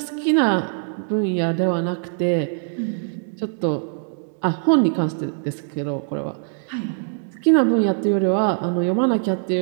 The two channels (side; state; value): left; silent; digital silence